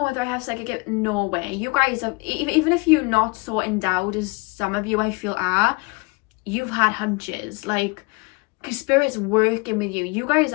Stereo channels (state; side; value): quieter; right; 28.8 dB